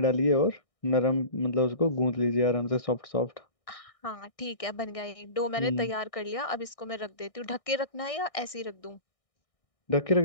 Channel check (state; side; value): late; right; 1.6 ms